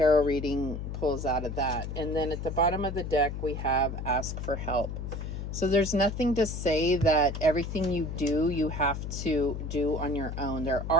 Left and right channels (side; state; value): left; noise; hum, 5 dB below the sound